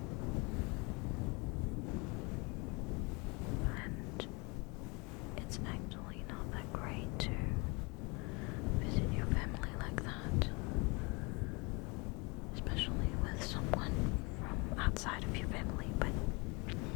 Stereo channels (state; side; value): quieter; right; 28.7 dB